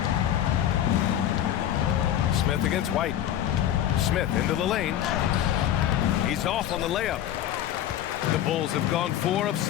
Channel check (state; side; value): quieter; right; 11.3 dB